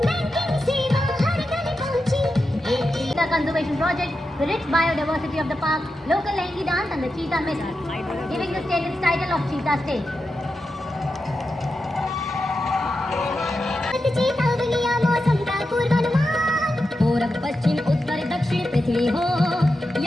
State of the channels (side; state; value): both; normal; correlation 0.89